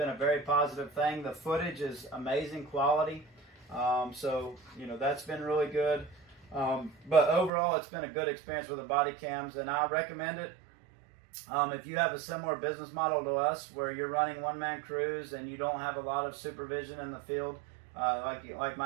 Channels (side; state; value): left; drops out; at 7.5 s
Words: a very positive thing. The footage is amazing quality. So that's been really good. But overall, it's been a good experience with the body cams, and I recommend it. If you have a similar business model to us, where you're running one-man crews and you don't have a lot of supervision in the field, like